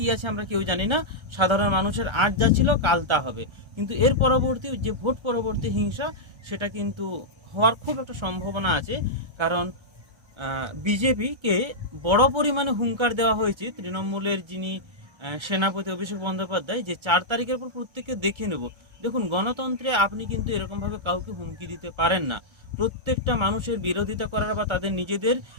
আছে আমরা কেউ জানি না। সাধারণ মানুষের আজ যা ছিল কাল তা হবে, কিন্তু এর পরবর্তী যে ভোট পরবর্তী হিংসা, সেটা কিন্তু হওয়ার খুব একটা সম্ভাবনা আছে। কারণ বিজেপিকে বড় পরিমাণে হুঙ্কার দেওয়া হয়েছে তৃণমূলের যিনি সেনাপতি অভিষেক বন্দ্যোপাধ্যায়, যে 4 তারিখের পর প্রত্যেককে দেখে নেব। দেখুন, গণতন্ত্রে আপনি কিন্তু এরকমভাবে কাউকে হুমকি দিতে পারেন না। প্রত্যেকটা মানুষের বিরোধিতা করার বা তাদের নিজেদের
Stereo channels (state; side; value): late; left; 1.3 ms